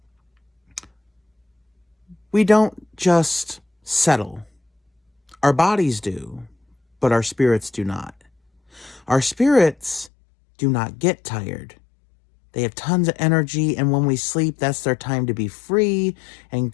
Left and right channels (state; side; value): drops out; right; at 10.1 s